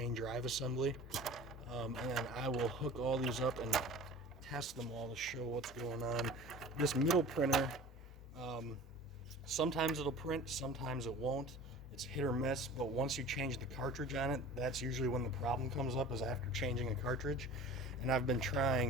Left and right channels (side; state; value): both; normal; correlation 0.40